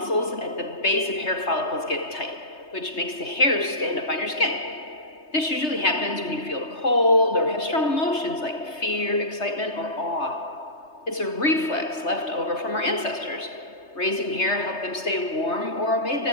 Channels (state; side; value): late; right; 3.3 ms